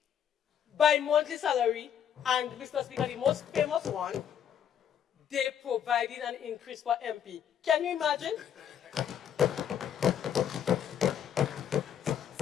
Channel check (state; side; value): quieter; right; 9.1 dB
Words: by monthly salary. And, Mr. Speaker, the most famous one, they provided an increase for MP. Can you imagine?